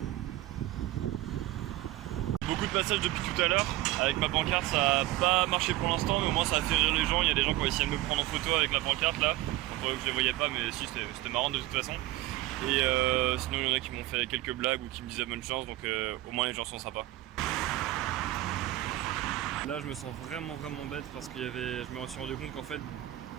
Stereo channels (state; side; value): quieter; left; 16.4 dB